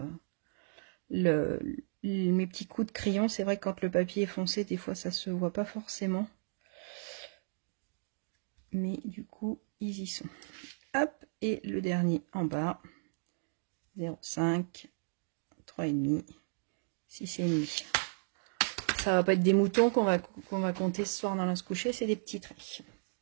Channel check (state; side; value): silent; left; digital silence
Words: mes petits coups de crayon. C'est vrai que quand le papier est foncé, des fois ça se voit pas forcément. Mais du coup, ils y sont. Hop, et le dernier en bas. 0,5, 3,5, 6,5. Ça va pas être des moutons qu'on va compter ce soir dans la se coucher, c'est des petits traits.